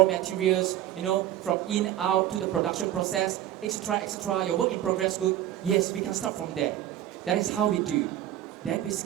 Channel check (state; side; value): quieter; left; 12.5 dB